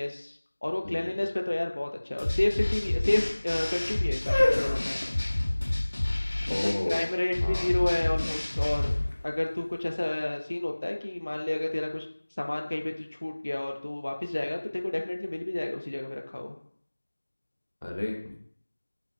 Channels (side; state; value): both; inverted; correlation -1.00